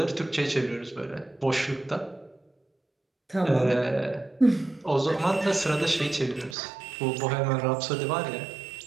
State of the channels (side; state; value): left; drops out; at 6.6 s